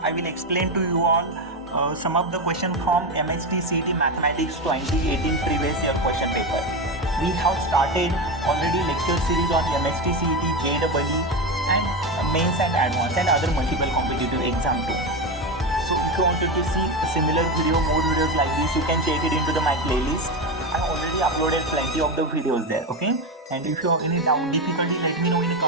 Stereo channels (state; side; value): normal; both; correlation 0.16